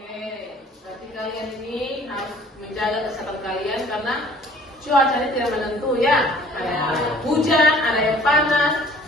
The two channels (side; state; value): both; normal; correlation 0.53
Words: berarti kalian ini harus menjaga kesehatan kalian karena cuacanya tidak menentu ya. Ada hujan, ada yang panas.